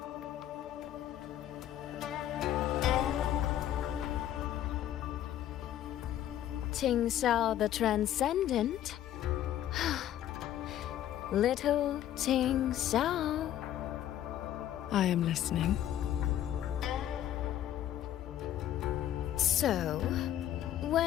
Qingxiao the Transcendent? Little Qingxiao. I am listening. So,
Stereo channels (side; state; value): right; quieter; 11.8 dB